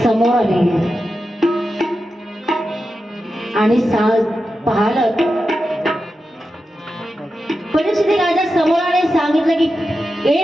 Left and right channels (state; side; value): normal; both; correlation 0.90